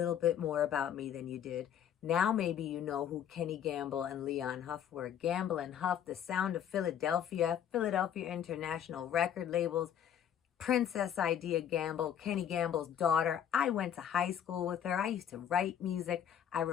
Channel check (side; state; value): right; quieter; 9.4 dB